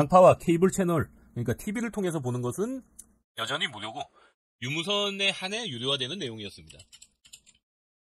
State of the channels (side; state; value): both; identical; correlation 1.00